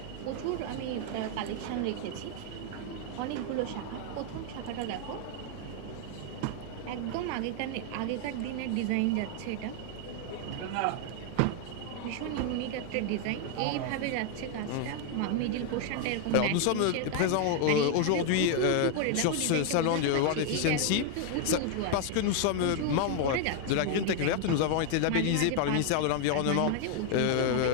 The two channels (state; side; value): different; both; correlation 0.00